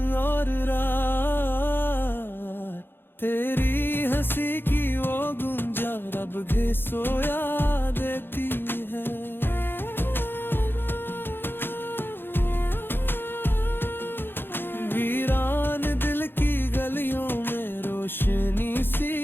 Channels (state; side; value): late; right; 0.10 ms